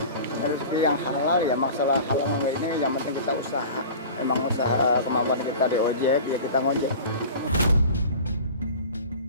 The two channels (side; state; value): both; inverted; correlation -0.38